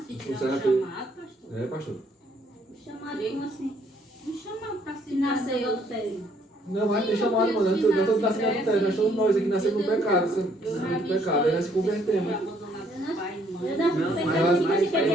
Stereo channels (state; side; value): normal; both; correlation 0.66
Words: se tiver Funciona um tudo. chamado, pastor. É, pastor. Chamado como assim? Um chamado para se Nasceu em adultério. Não, mas tem chamado, mano. Nós todos nascemos no adultério. Nós somos nós aqui nascemos no pecado. No pecado. Aí nós se convertemos. Eu Não, não mas- pensando tipo mas assim, porque é a